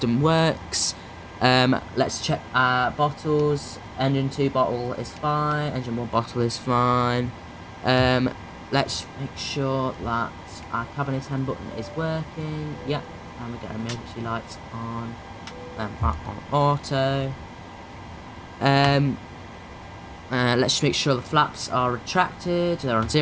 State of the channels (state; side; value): identical; both; correlation 1.00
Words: works. Let's check our bottles. Engine 2 bottle is fine. Engine 1 bottle is fine. Let's make sure that our cabin attend button is working. Yep. And we get emergency lights on. Back on auto. Let's make sure the flaps are retracted. They're on